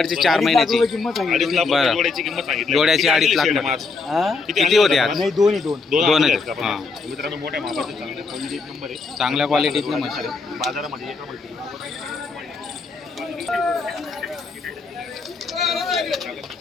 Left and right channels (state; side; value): quieter; right; 4.3 dB